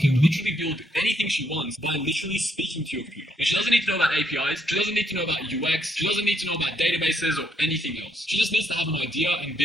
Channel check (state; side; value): normal; both; correlation 0.73